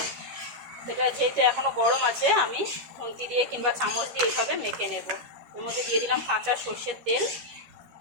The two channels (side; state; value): left; late; 13 ms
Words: এটা যেহেতু এখনও গরম আছে, আমি খুন্তি দিয়ে কিংবা চামচ দিয়ে এইভাবে মেখে নেব। এর মধ্যে দিয়ে দিলাম কাঁচা সর্ষের তেল,